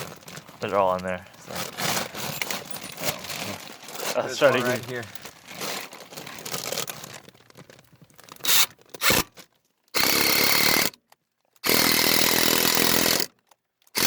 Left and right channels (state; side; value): identical; both; correlation 1.00